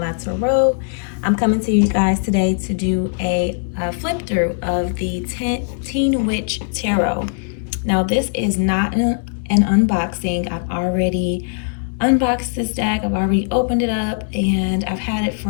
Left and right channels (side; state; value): right; silent; digital silence